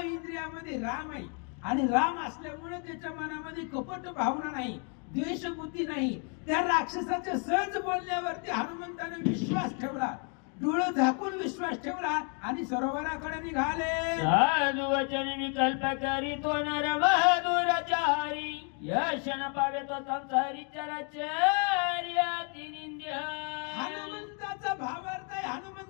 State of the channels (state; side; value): quieter; right; 39.3 dB